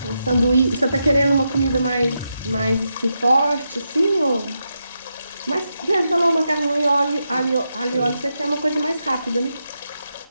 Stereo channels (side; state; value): both; inverted; correlation -0.85